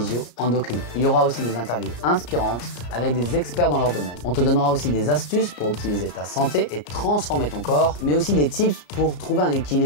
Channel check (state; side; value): late; right; 34 ms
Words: Il y aura aussi des interviews inspirantes avec des experts dans leur domaine. On te donnera aussi des astuces pour optimiser ta santé et transformer ton corps, mais aussi des tips pour trouver un